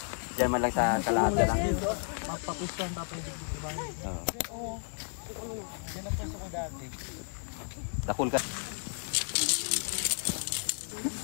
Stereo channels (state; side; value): silent; right; 56 dB below the other